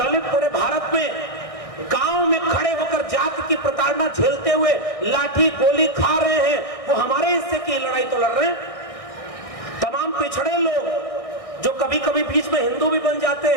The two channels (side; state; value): right; late; 1.6 ms